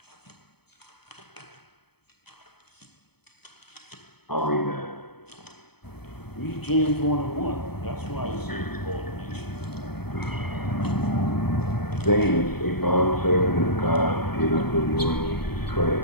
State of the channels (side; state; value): right; late; 0.97 ms